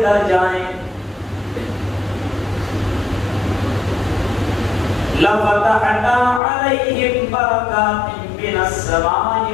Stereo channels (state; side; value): drops out; right; at 6.4 s